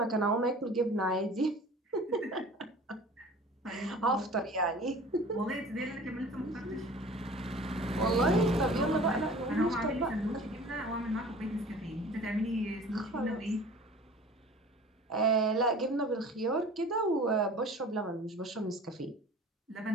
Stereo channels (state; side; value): normal; both; correlation 0.43